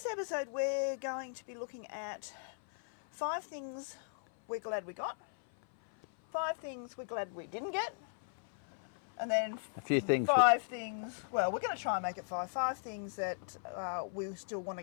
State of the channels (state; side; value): silent; right; 53 dB below the other